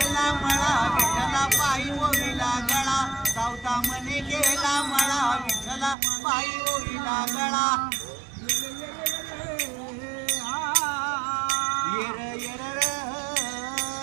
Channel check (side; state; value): left; drops out; at 6.0 s